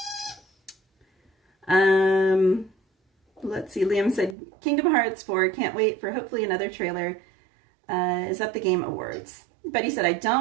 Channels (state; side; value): drops out; left; at 4.4 s